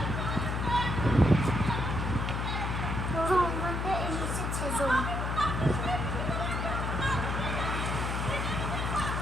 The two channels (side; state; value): left; noise; hum, 1 dB below the sound